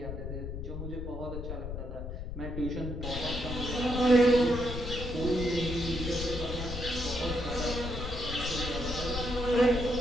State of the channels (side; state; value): left; noise; rumble, 6 dB below the sound